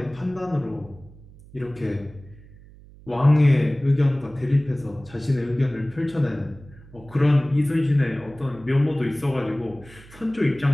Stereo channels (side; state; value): right; noise; hum, 22 dB below the sound